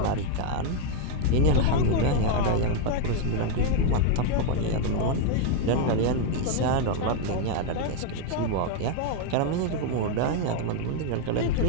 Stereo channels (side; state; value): both; different; correlation 0.01